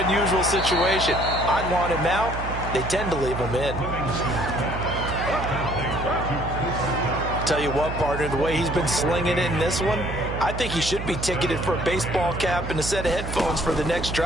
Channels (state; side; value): noise; right; hum, 6 dB below the sound